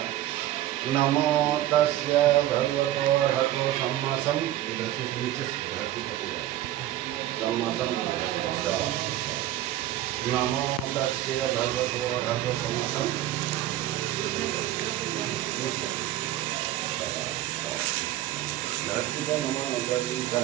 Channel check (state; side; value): quieter; left; 13.7 dB